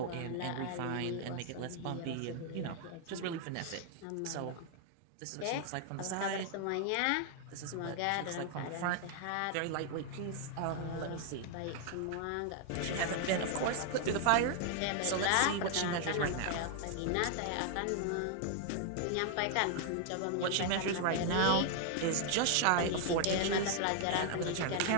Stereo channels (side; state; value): both; different; correlation 0.00